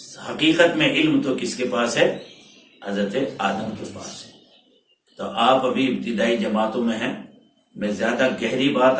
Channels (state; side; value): identical; both; correlation 1.00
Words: حقیقت میں علم تو کس کے پاس ہے؟ حضرت آدم کے پاس ہے۔ تو آپ ابھی ابتدائی جماعتوں میں ہیں، میں زیادہ گہری بات